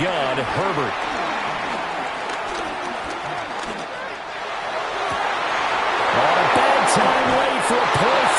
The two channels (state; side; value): identical; both; correlation 1.00